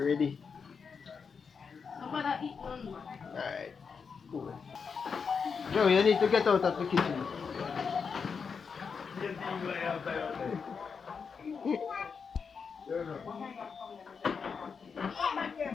I'm gonna eat one more. Alright. Cool. Joe, you need to get out of the kitchen.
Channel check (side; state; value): right; quieter; 5.8 dB